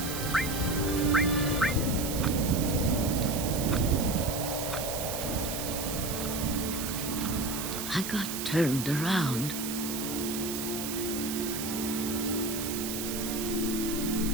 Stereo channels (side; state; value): right; noise; hiss, 5 dB below the sound